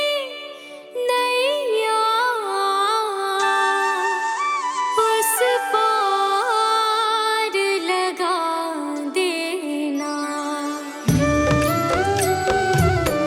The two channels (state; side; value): identical; both; correlation 1.00